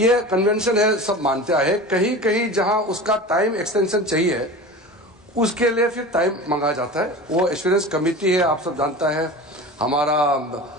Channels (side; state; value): both; normal; correlation 0.33